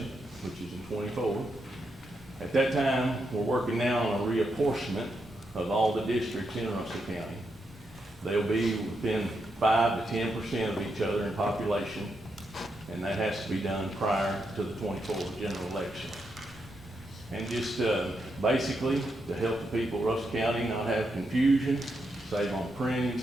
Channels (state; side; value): normal; both; correlation 0.82